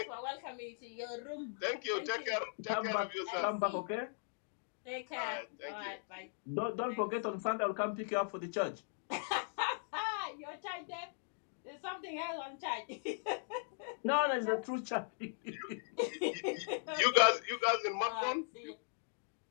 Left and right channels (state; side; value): silent; right; digital silence